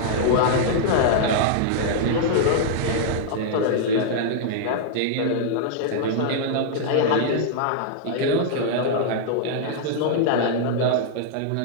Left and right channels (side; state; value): both; different; correlation -0.01